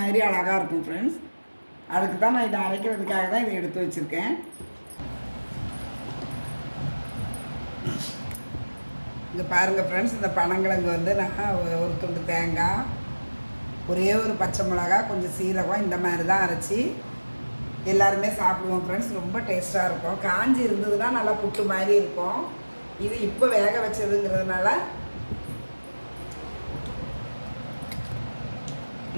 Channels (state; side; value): inverted; both; correlation -1.00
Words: அழகாக இருக்கும் ஃப்ரெண்ட்ஸ். அதுக்கு தான் நான் இதை அரைக்கிறதுக்காக தான் இதை எடுத்து வச்சுருக்கேன். இங்கே பாருங்கள் ஃப்ரெண்ட்ஸ், இந்த பனங்கிழங்கு வந்து நான் ஒரு துண்டு தேங்காய் ஒரே ஒரு பச்சை மிளகா கொஞ்சம் சீரகம் இந்த மாதிரி தான் அரைச்சி எல்லாருமே சாப்பிடுவோம் ஃப்ரெண்ட்ஸ். ரொம்ப டேஸ்ட்டாக இருக்கும். காஞ்சி இருந்ததுன்னா நல்லா புட்டு மாதிரி இருக்கும். இது இப்போ வேக வச்சதுங்கிறதுனால